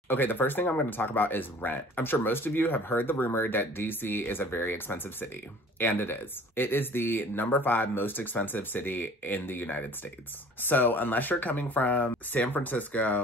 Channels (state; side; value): normal; both; correlation 0.48